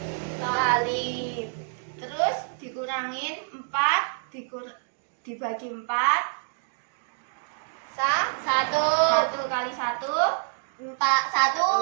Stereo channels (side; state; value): left; silent; digital silence